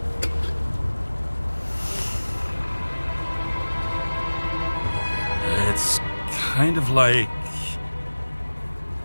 It's kind of like...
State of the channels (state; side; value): inverted; both; correlation -1.00